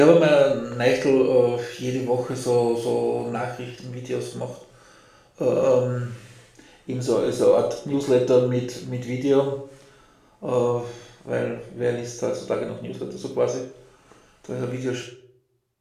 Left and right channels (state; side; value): identical; both; correlation 1.00